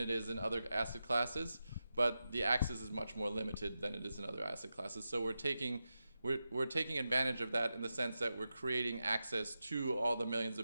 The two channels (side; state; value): both; inverted; correlation -0.90